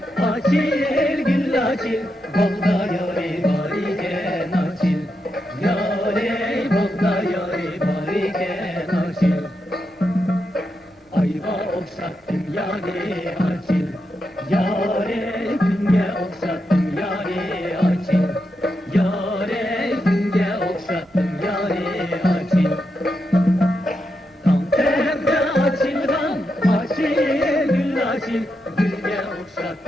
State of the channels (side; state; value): both; normal; correlation 0.85